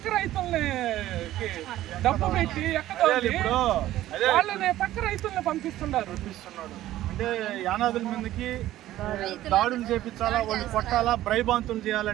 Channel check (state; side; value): quieter; left; 14.3 dB